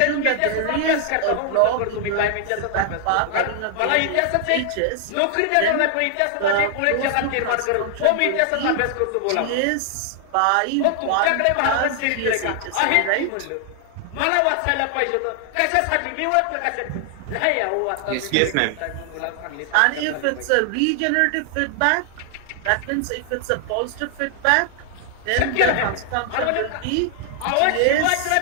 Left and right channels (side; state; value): both; different; correlation 0.00